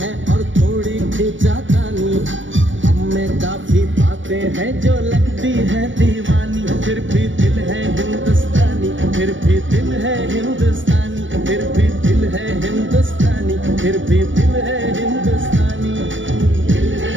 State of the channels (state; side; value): late; left; 0.56 ms